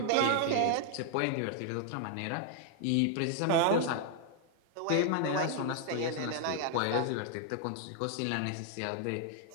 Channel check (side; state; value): both; different; correlation 0.00